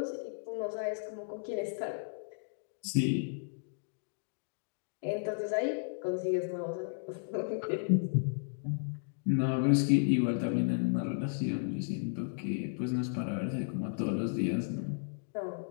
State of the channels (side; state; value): right; silent; digital silence